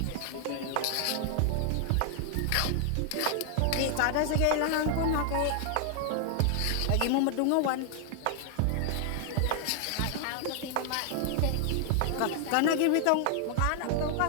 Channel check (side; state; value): both; different; correlation 0.00